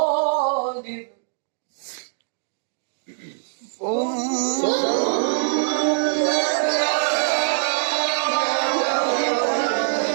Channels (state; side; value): silent; left; digital silence